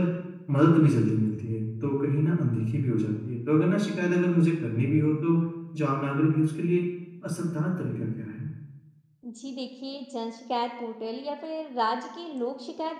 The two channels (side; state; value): both; identical; correlation 1.00